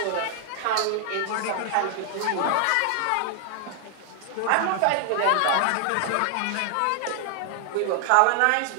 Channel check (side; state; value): both; different; correlation 0.00